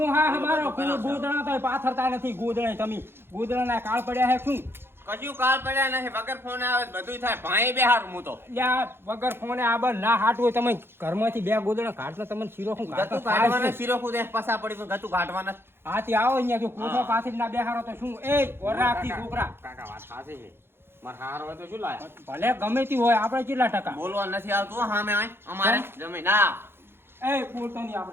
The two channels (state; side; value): late; left; 0.11 ms